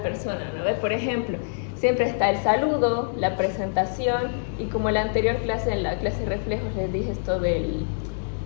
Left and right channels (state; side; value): silent; right; digital silence